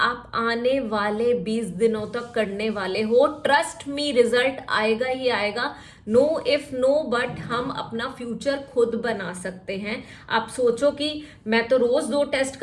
आने वाले 20 दिनों तक करने वाले हो। ट्रस्ट मी, रिजल्ट आएगा ही आएगा। नो इफ नो बट, हम अपना फ्यूचर खुद बना सकते हैं। आप सोचो कि मैं तो रोज 2 टेस्ट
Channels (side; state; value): both; identical; correlation 1.00